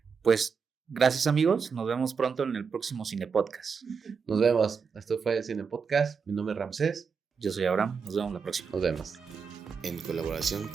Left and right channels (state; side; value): quieter; left; 5.8 dB